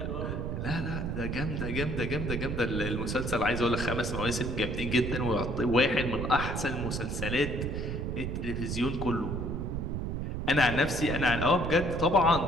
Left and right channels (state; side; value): noise; right; rumble, 3 dB below the sound